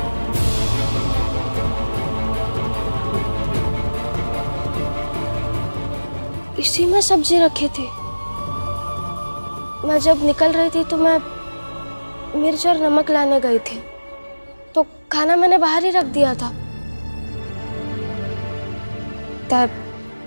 इसी में सब्जी रखी थी। मैं जब निकल रही थी तो मैं मिर्च और नमक लाने गई थी, तो खाना मैंने बाहर ही रख दिया था।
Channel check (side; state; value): both; inverted; correlation -1.00